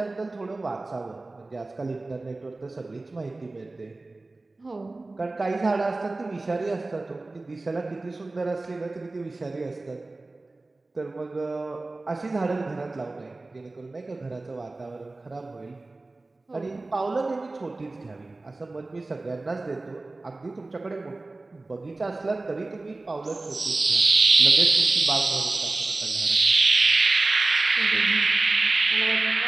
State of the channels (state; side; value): quieter; left; 3.2 dB